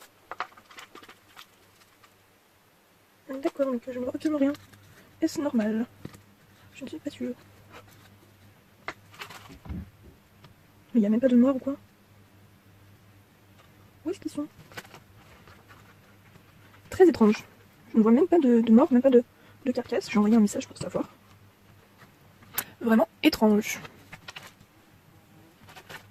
D'accord, donc je ne vois absolument rien. Est-ce normal? Je ne suis pas sûre. Mais il n'y a même pas de mort ou quoi? Où est-ce qu'ils sont? Très étrange. Je ne vois même pas de mort, même pas de carcasse. J'ai envoyé un message pour savoir. Vraiment étrange.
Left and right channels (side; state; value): both; identical; correlation 1.00